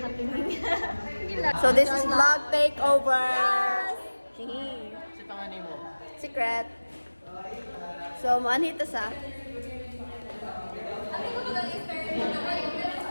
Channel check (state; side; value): inverted; both; correlation -1.00